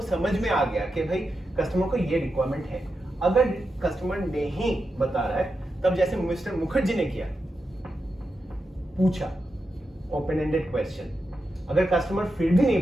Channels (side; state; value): both; normal; correlation 0.88